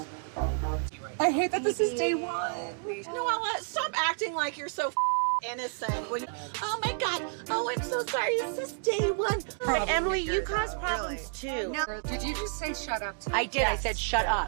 I hate that this is day one. Noella, stop acting like you're so innocent. Oh my God. Oh, I'm so sorry. It's just day one. But Emily, you cause problems too. No. Did you just say shut up? I did. I said shut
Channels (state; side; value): silent; left; digital silence